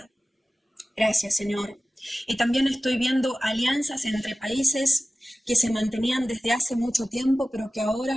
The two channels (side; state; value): both; normal; correlation 0.96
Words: Gracias, Señor. Y también estoy viendo alianzas entre países que se mantenían desde hace mucho tiempo, pero que